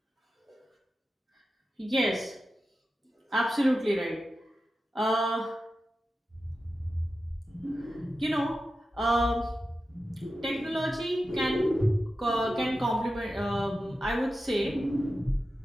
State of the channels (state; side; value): normal; both; correlation 0.92